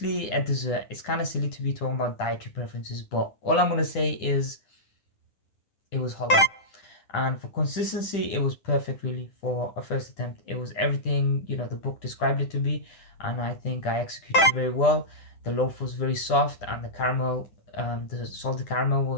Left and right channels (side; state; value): right; late; 10 ms